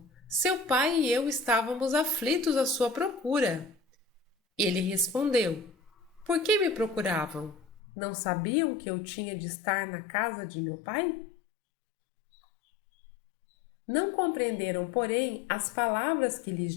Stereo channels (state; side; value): drops out; right; at 7.8 s